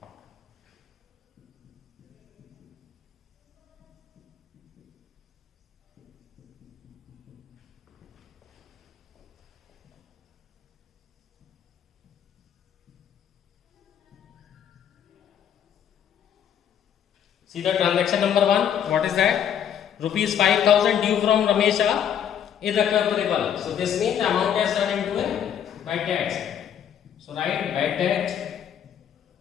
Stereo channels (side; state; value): right; quieter; 9.1 dB